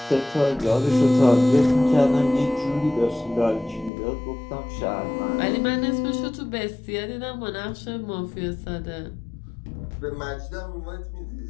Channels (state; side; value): drops out; right; at 3.9 s